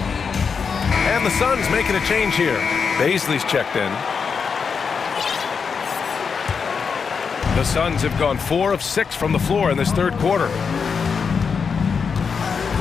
And And the Suns making a change here. Baisley's checked in. The Suns have gone 4 of 6 from the floor in this third quarter.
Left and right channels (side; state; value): right; quieter; 5.8 dB